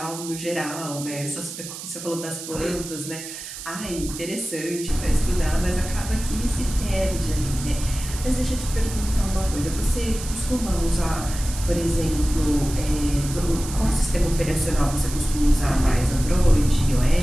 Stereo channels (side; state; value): right; noise; hiss, 10 dB below the sound